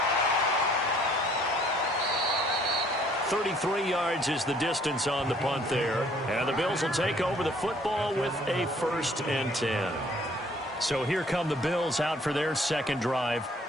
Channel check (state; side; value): normal; both; correlation 0.60